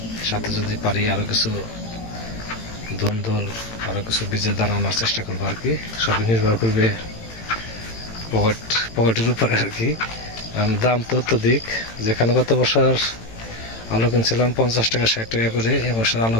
সাথে যদি পারি আরও কিছু ধুন্দল, আরও কিছু বীজের দানা আনার চেষ্টা করবো আর কি। সবই নির্ভর করবে পকেটের উপরে আর কি। দাম তো অত্যধিক, যেখানে গত বছর আলু কিনছিলাম 50 টাকা 60 টাকা করে, এবছর আলু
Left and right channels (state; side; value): late; right; 18 ms